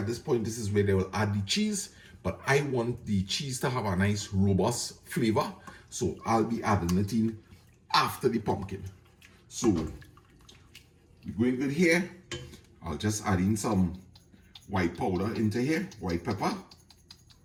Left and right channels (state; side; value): identical; both; correlation 1.00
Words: this point, this is where they will add the cheese, but I want the cheese to have a nice robust flavor. So I'll be adding it in after the pumpkin. So we're going good here. I'll just add in some white powder into here, white pepper.